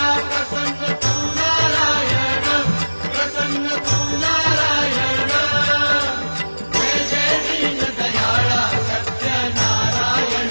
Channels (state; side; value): inverted; both; correlation -1.00